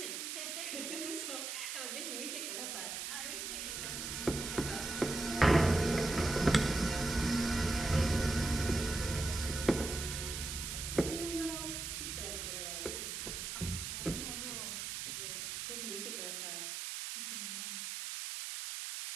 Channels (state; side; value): noise; right; hiss, 4 dB below the sound